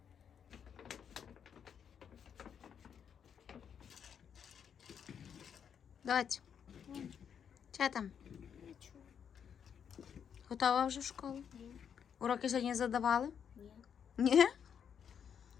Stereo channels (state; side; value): quieter; right; 7.8 dB